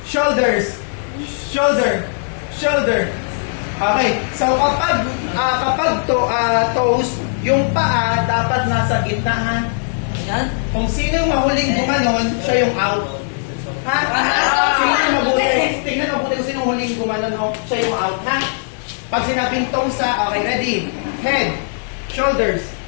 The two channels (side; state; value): right; silent; 67 dB below the other